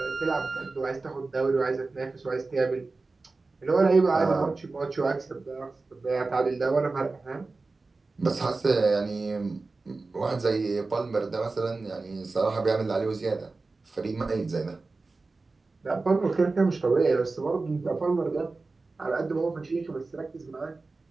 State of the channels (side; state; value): left; quieter; 3.7 dB